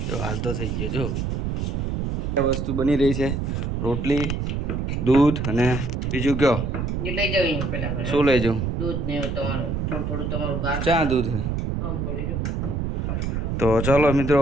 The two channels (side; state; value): right; noise; rumble, 1 dB below the sound